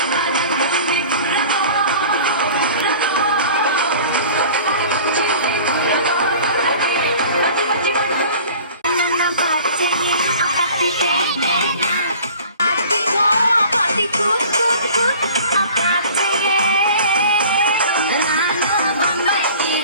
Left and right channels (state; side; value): inverted; both; correlation -0.44